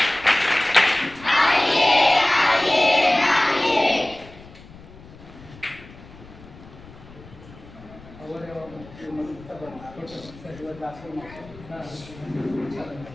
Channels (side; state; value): left; noise; rumble, 20 dB below the sound